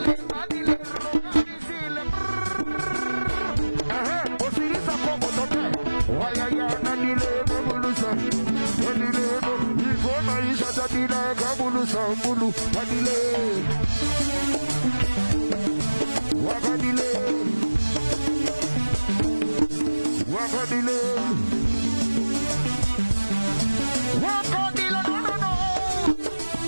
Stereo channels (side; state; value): both; inverted; correlation -1.00